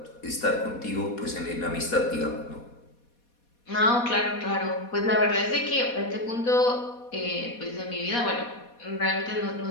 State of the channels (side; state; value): right; late; 4.2 ms